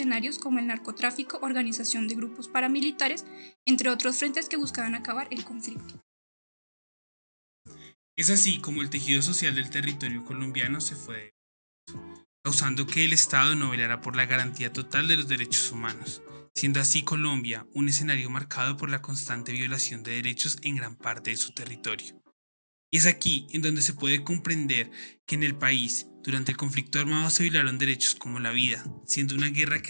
como el narcotráfico, organización de grupos paramilitares, entre otros frentes que buscaban acabar el conflicto. Es así como el tejido social del territorio colombiano se fue causando que el Estado no velara por la garantía total de los derechos humanos, siendo así Colombia un escenario marcado por la constante violación de derechos en gran parte de su territorio. Y es aquí en donde se puede comprender que en el país, durante el conflicto armado se violaron derechos como la vida, siendo una guerra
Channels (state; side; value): inverted; both; correlation -1.00